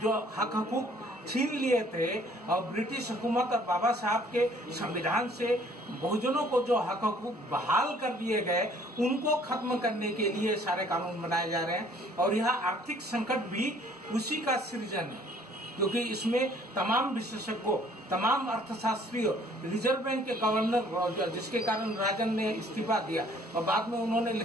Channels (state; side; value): normal; both; correlation 0.58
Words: हक हकूक छीन लिए थे, और ब्रिटिश हुकूमत और बाबा साहब के संविधान से बहुजनों को जो हक हकूक बहाल कर दिए गए, उनको खत्म करने के लिए सारे कानून बनाए जा रहे हैं। और यह आर्थिक संकट भी उसी का सृजन है, क्योंकि इसमें तमाम विशेषज्ञों, तमाम अर्थशास्त्रियों, रिजर्व बैंक के गवर्नर, जिसके कारण राजन ने इस्तीफा दिया और बाद में उन्होंने